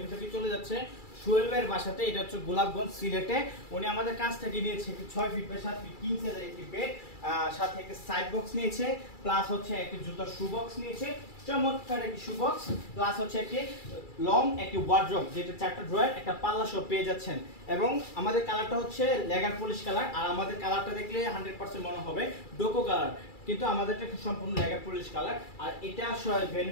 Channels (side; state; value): right; late; 2.3 ms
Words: থেকে চলে যাচ্ছে সোহেল ভাইয়ের বাসাতে। এটা হচ্ছে গোলাপগঞ্জ সিলেটে। উনি আমাদের কাছ থেকে নিয়েছে 6 ফিট বাই 7 ফিট কিং সাইজের একটি বেড, সাথে একটা সাইড বক্স নিয়েছে, প্লাস হচ্ছে একটি জুতার শু বক্স নিয়েছে, চমৎকার একটি শু বক্স, প্লাস হচ্ছে একটি লং একটি ওয়ার্ড্রপ, যেটা 4টা ড্রয়ার একটা পাল্লা সহ পেয়ে যাচ্ছেন। এবং আমাদের কালারটা হচ্ছে লেগার পলিশ কালার, আর আমাদের কালারটা দেখলে 100% মনে হবে ডোকো কালার, কিন্তু আমাদেরটা সম্পূর্ণ লেগার পলিশ কালার। আর এটা